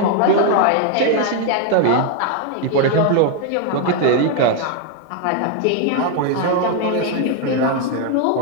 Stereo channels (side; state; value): both; different; correlation 0.01